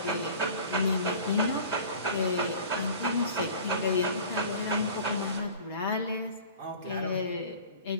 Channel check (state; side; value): inverted; both; correlation -0.42